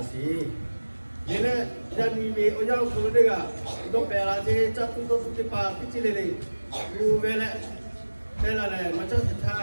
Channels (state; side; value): inverted; both; correlation -1.00